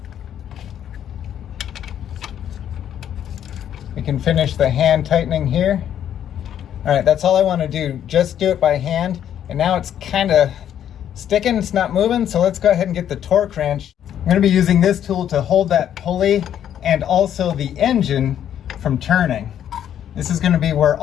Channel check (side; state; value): right; quieter; 10.0 dB